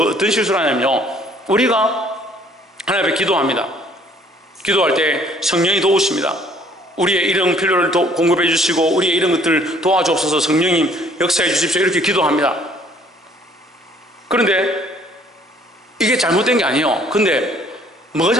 실수를 하냐면요, 우리가 하나님 앞에 기도합니다. 기도할 때 성령이 도우십니다. 우리의 이런 필요를 공급해 주시고 우리의 이런 것들을 도와주옵소서, 성령님 역사해 주십시오, 이렇게 기도합니다. 그런데 이게 잘못된 게 아니에요. 근데 뭐가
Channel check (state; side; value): normal; both; correlation 0.59